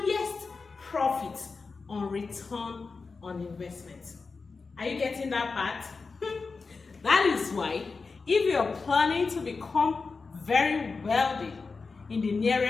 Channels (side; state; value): right; quieter; 4.4 dB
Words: profit on return on investment. Are you getting that part? That is why, if you're planning to become very wealthy in the